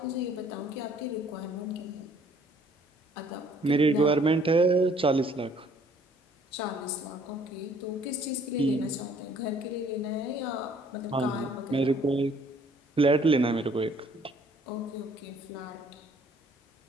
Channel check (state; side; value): normal; both; correlation 0.60